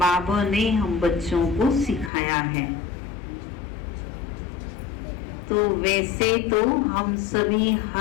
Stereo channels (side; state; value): right; drops out; at 2.1 s